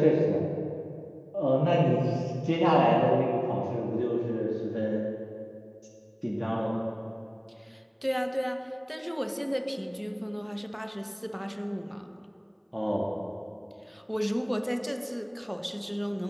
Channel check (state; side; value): identical; both; correlation 1.00